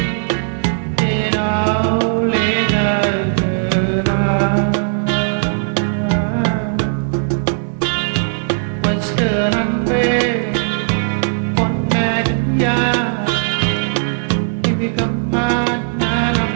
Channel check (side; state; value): left; silent; digital silence